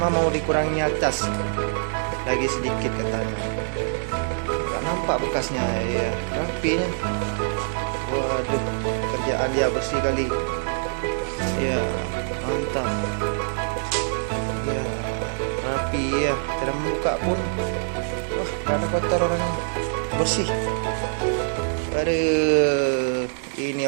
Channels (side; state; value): left; silent; digital silence